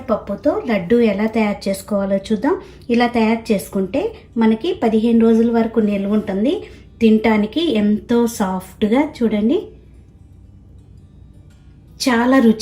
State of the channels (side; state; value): both; identical; correlation 1.00